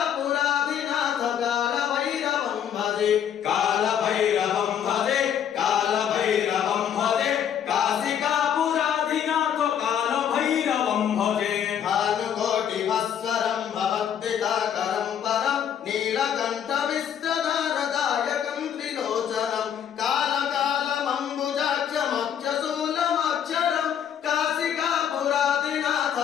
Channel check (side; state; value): right; quieter; 8.9 dB